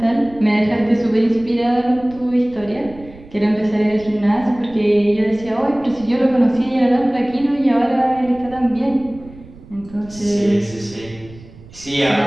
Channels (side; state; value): right; noise; rumble, 20 dB below the sound